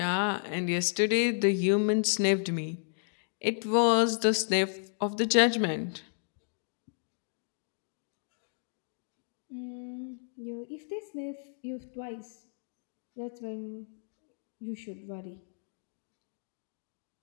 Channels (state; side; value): silent; right; digital silence